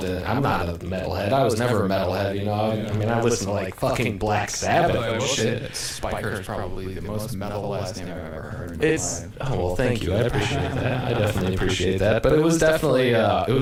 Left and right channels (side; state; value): both; identical; correlation 1.00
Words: in it, I'm not a metalhead. I was never a metalhead, I listened to like fucking Black Sabbath and shit. Spiker's probably the most metal last name I've ever heard. Thank you. I appreciate that. I definitely appreciate that. But it was definitely out